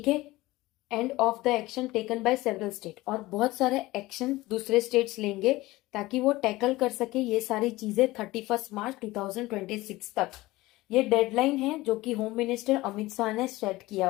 है। एंड ऑफ द एक्शन टेकन बाय सेवरल स्टेट, और बहुत सारे एक्शन दूसरे स्टेट्स लेंगे ताकि वो टैकल कर सके ये सारी चीजें 31 मार्च 2026 तक। ये डेडलाइन है जो कि होम मिनिस्टर अमित शाह ने सेट किया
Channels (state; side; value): quieter; right; 19.1 dB